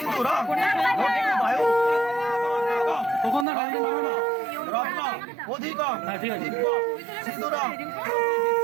বায়ু তখন না গাড়ি মারবে না রত্ন অধিকম ঠিক আছে সিঁদুরম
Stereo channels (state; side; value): drops out; left; at 3.5 s